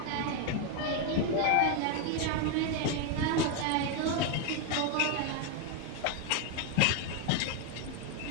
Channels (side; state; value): both; different; correlation 0.01